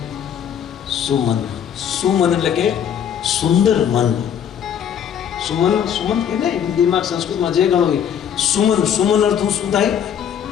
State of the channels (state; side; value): quieter; right; 8.8 dB